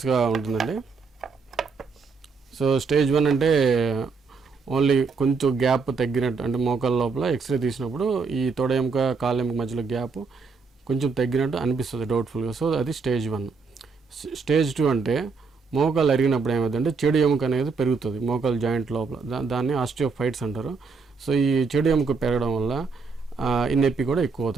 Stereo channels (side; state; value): left; quieter; 4.7 dB